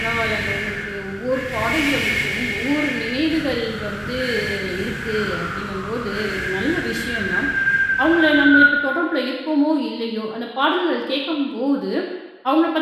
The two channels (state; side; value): identical; both; correlation 1.00